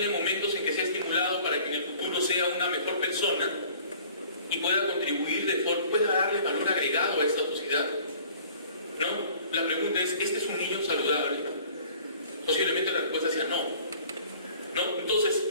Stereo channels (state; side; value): inverted; both; correlation -0.51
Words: momentos en que sea estimulado para que en el futuro sea una mejor persona y pueda contribuir pueda darle valor agregado a esta sociedad, ¿no? La pregunta es, ¿este es un niño saludable? Posiblemente la respuesta sea no, ¿no? Entonces,